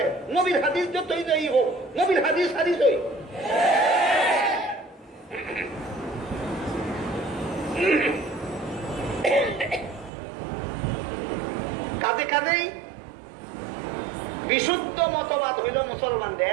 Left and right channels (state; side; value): drops out; left; at 10.1 s